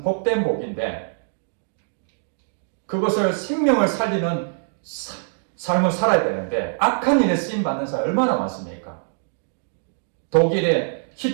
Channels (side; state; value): left; silent; digital silence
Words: 복된 복인데 그것을 생명을 살리는 삶을 살아야 되는데 악한 일에 쓰임받는 사람이 얼마나 많습니까? 독일의